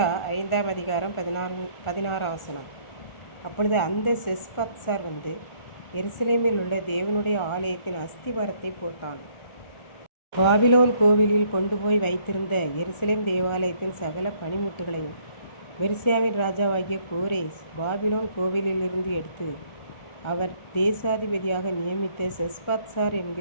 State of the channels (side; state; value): right; late; 1.3 ms